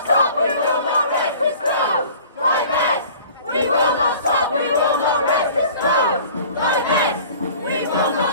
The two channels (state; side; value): inverted; both; correlation -0.47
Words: stop, we will not rest this close! Divest! We will not stop, we will not rest this close! Divest! We will